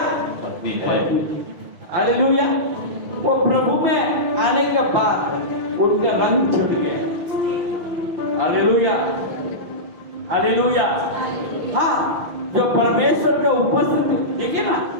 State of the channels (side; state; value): left; late; 6.2 ms